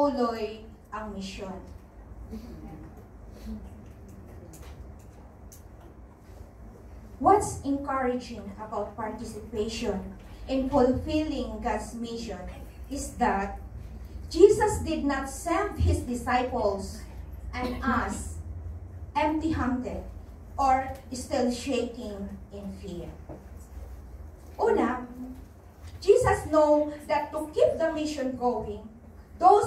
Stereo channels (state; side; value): identical; both; correlation 1.00